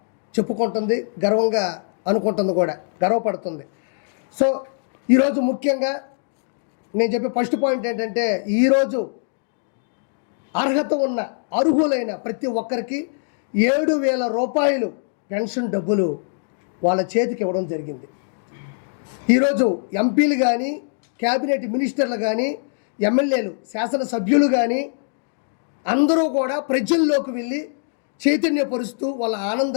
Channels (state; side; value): silent; right; digital silence